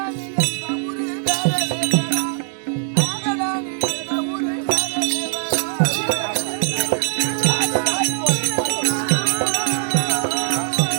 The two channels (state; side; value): silent; left; digital silence